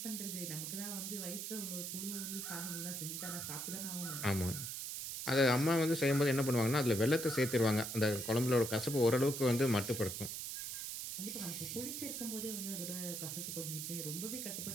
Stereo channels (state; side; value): noise; right; hiss, 5 dB below the sound